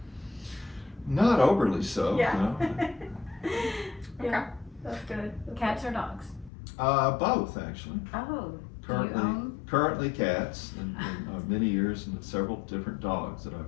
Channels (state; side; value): drops out; right; at 6.5 s